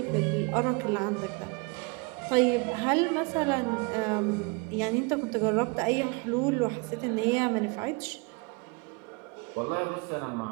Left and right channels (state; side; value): quieter; left; 29.7 dB